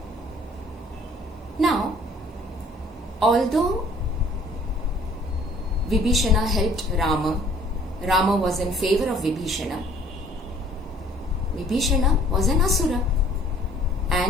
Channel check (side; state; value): both; normal; correlation 0.56